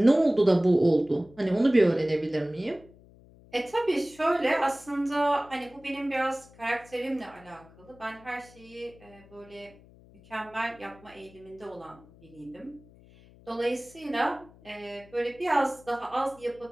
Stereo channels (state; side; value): noise; left; hum, 24 dB below the sound